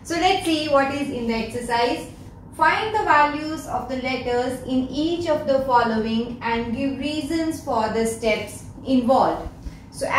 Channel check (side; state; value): both; identical; correlation 1.00